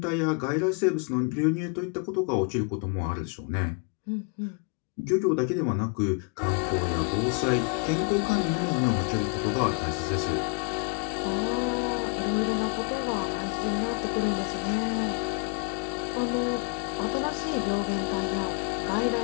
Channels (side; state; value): right; quieter; 34.1 dB